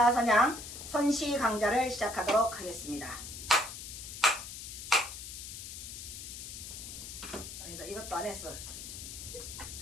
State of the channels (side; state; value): left; noise; hiss, 10 dB below the sound